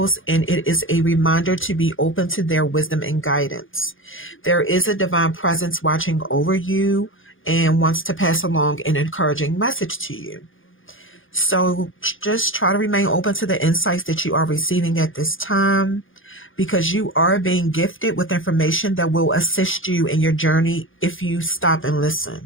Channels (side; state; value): right; late; 0.58 ms